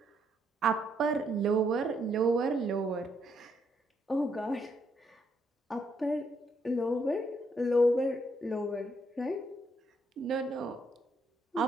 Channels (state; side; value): normal; both; correlation 0.74